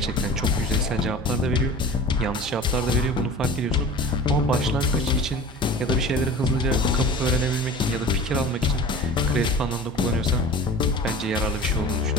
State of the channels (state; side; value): normal; both; correlation 0.38